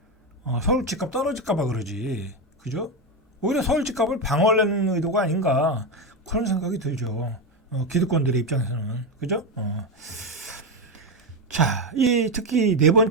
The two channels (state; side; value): normal; both; correlation 0.11